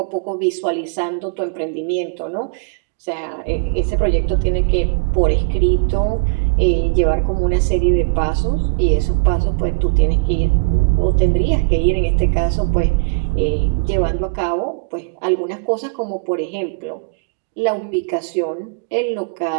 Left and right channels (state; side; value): quieter; left; 31.6 dB